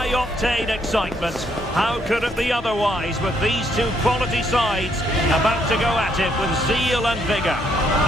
excitement. How could it be otherwise with these two quality sides about to go at it with zeal and vigour?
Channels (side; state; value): both; normal; correlation 0.72